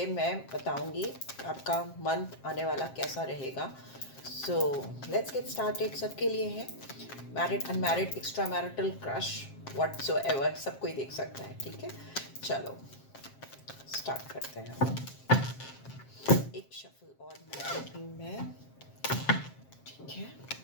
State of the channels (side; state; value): right; late; 7.5 ms